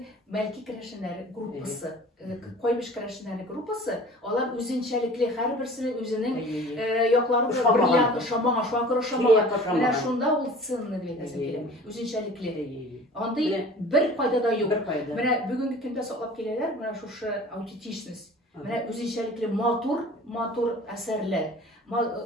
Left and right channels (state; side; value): normal; both; correlation 0.44